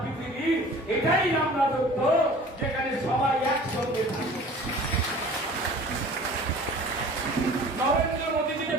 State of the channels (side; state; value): both; normal; correlation 0.45